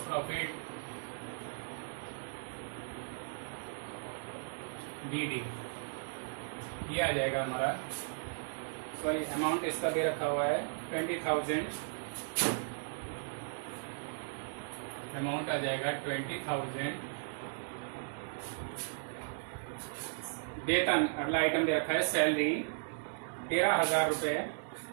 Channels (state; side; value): silent; left; digital silence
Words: प्रॉफिट BD, ये आ जाएगा हमारा। सॉरी, अमाउंट इसका दे रखा हुआ है 20,000, अमाउंट आ जाएगा 20,000। वेतन, अगला आइटम दे रखा है सैलरी 13,000 रुपए।